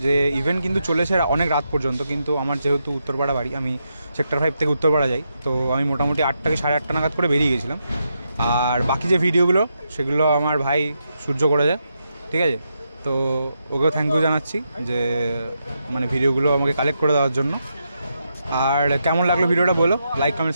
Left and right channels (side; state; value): both; inverted; correlation -0.83